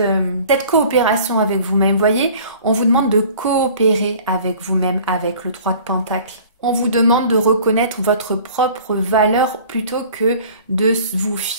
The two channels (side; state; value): both; inverted; correlation -0.48